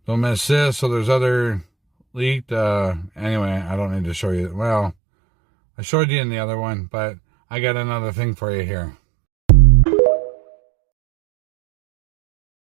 Don't miss this. So there's other leaked. Anyway, I don't need to show you. Well, I showed you in the other one, but I got another thing for you here.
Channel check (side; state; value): left; drops out; at 5.0 s